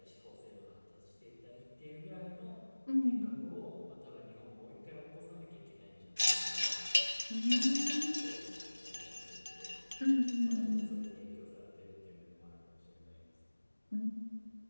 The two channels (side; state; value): both; inverted; correlation -1.00